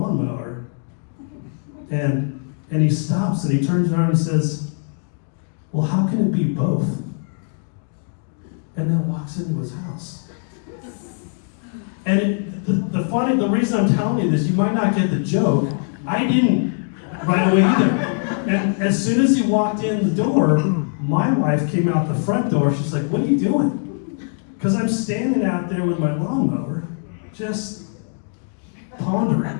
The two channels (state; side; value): silent; right; 56 dB below the other